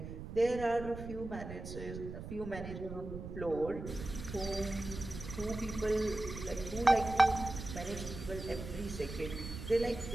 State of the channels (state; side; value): noise; right; rumble, 9 dB below the sound